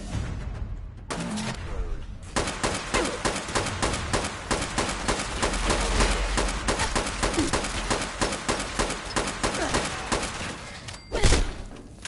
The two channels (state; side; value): identical; both; correlation 1.00